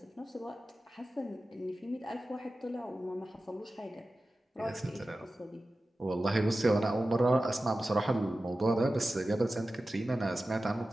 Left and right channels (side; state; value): both; normal; correlation 0.94